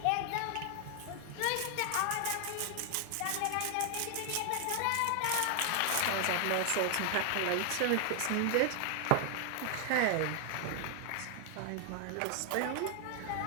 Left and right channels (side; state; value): both; different; correlation 0.00